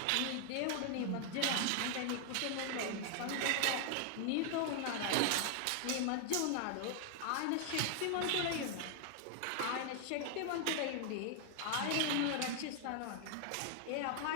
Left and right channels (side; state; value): both; different; correlation 0.00